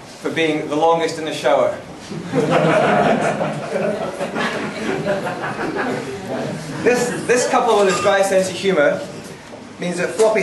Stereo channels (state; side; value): identical; both; correlation 1.00